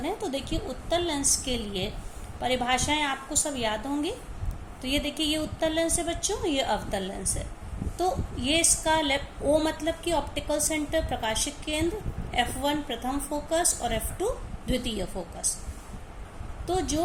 तो देखिए उत्तल लेंस के लिए परिभाषाएं आपको सब याद होंगी। तो ये देखिए ये उत्तल लेंस है बच्चों, ये अवतल लेंस है। तो ये इसका ओ मतलब कि ऑप्टिकल सेंटर प्रकाशिक केंद्र, F1 प्रथम फोकस और F2 द्वितीय फोकस। तो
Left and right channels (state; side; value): identical; both; correlation 1.00